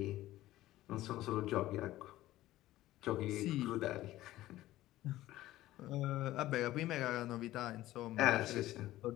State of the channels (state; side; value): quieter; right; 15.6 dB